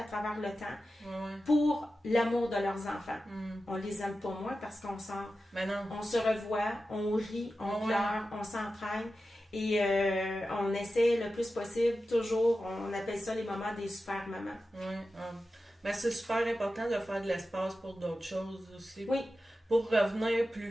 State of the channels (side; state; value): both; normal; correlation 0.92